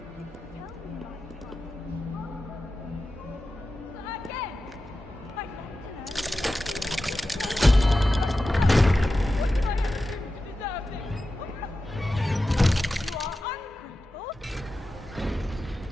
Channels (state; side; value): normal; both; correlation 0.93